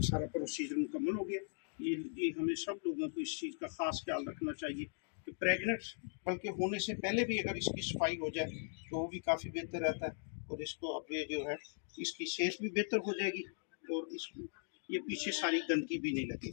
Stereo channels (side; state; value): right; silent; digital silence